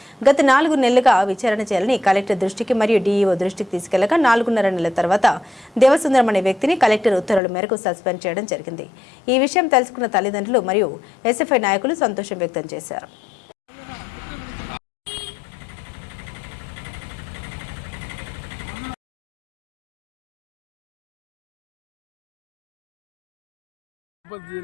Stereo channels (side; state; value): right; drops out; at 7.4 s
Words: గత 4 నెలలుగా విచారణ చేయాలని కలెక్టర్ దృష్టికి మరియు డీఈఓ దృష్టికి తీసుకెళ్లగా 4.5 నెలల తర్వాత దేవసుందరం అనే వ్యక్తిని కలెక్టర్ ఉత్తర్వుల మేరకు సస్పెండ్ చేయడం జరిగింది. ఈ విషయం తెలుసుకున్న తల్లిదండ్రులు మరియు ఎస్ఎఫ్ఐ నాయకులు సంతోషం వ్యక్తం చేశారు.